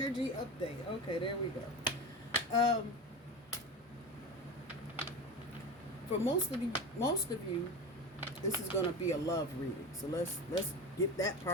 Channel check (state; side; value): normal; both; correlation 0.26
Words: update. Okay, there we go. For most of you, this is going to be a love reading. So let's get that